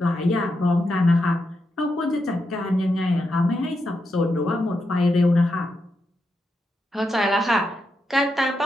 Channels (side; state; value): both; normal; correlation 0.84